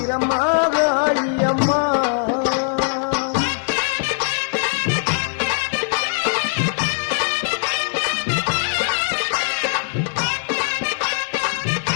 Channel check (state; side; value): silent; right; digital silence